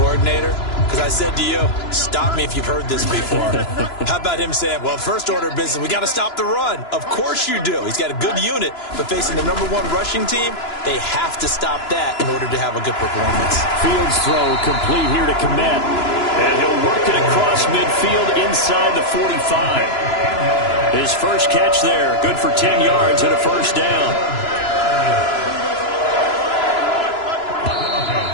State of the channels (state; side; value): late; right; 2.9 ms